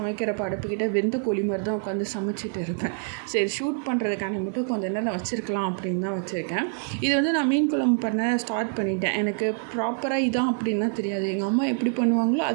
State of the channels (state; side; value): silent; left; 56 dB below the other